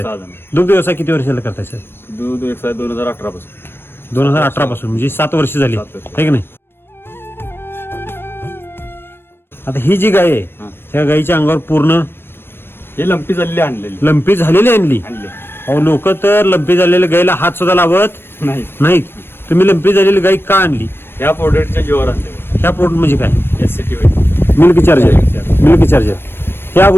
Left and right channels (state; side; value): late; right; 0.11 ms